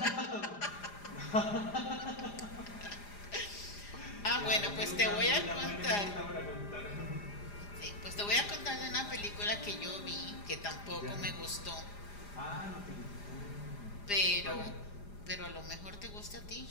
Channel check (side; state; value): right; late; 4.9 ms